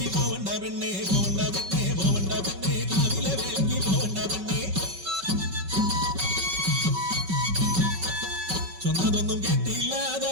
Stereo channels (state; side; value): late; left; 5.3 ms